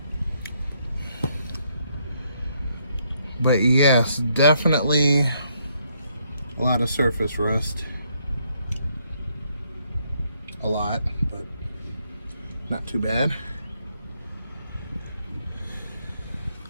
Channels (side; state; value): both; inverted; correlation -0.73